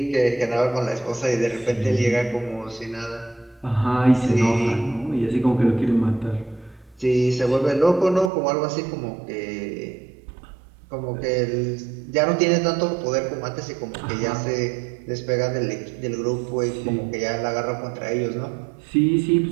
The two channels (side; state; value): left; drops out; at 8.3 s